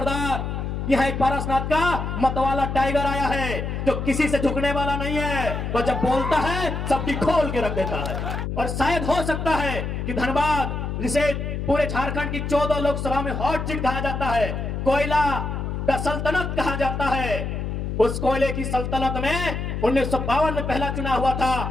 यह एक पारसनाथ का मतवाला टाइगर आया है जो किसी से झुकने वाला नहीं है। वो जब बोलता है सबकी खोल के रख देता है। और शायद हो सकता है कि धनबाद, जिसे पूरे झारखंड की 14 लोकसभा में हॉट सीट कहा जाता है, कोयला का सल्तनत कहा जाता है, उस कोयले की सल्तनत में 1952 में पहला चुनाव हुआ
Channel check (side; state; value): left; noise; hum, 3 dB below the sound